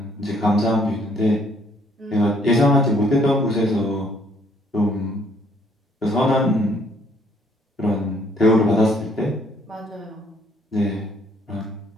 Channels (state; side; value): normal; both; correlation 0.64